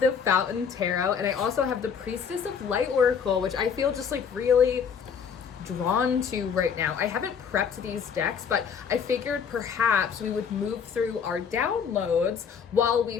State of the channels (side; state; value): right; quieter; 6.9 dB